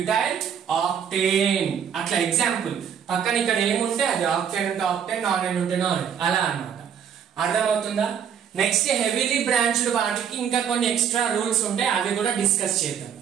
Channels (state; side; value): quieter; left; 8.1 dB